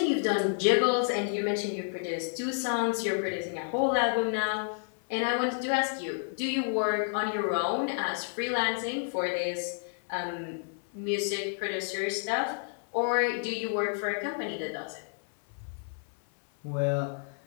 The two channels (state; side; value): silent; right; 57 dB below the other